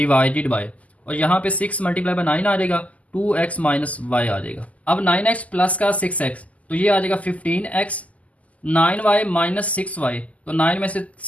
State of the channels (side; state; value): right; late; 0.071 ms